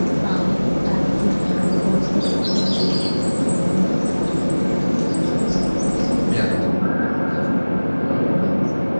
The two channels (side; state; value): both; inverted; correlation -1.00